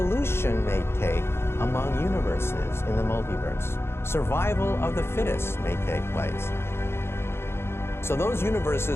may take among universes in the multiverse. Survival of the fittest may take place. So those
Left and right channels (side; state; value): right; late; 0.12 ms